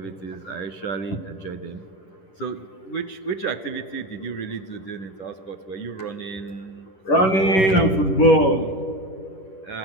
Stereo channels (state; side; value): late; right; 11 ms